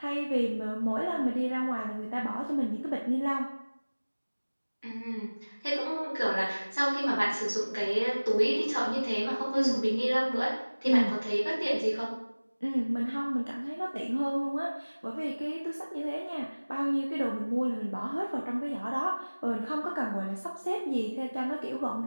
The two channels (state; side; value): inverted; both; correlation -1.00